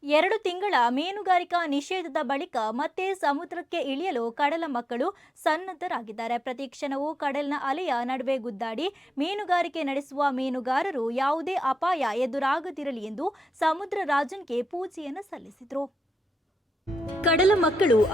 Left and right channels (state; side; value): normal; both; correlation 0.89